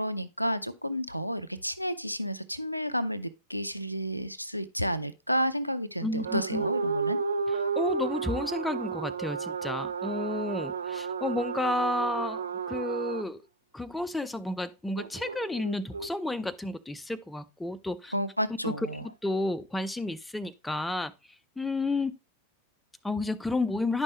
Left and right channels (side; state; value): both; normal; correlation 0.02